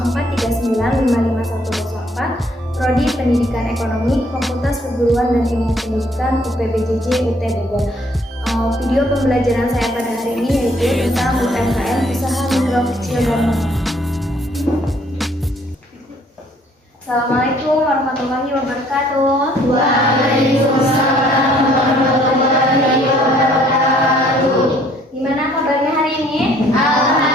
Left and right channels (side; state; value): both; normal; correlation 0.62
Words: Prodi Pendidikan Ekonomi, Fakultas Perguruan dan Ilmu Pendidikan UPBJJ UT Bogor. Video pembelajaran saya pada hari ini yaitu tentang UMKM, usaha mikro kecil dan menengah. Assalamualaikum warahmatullahi wabarakatuh. Waalaikumsalam warahmatullahi wabarakatuh. Gimana kabarnya hari ini?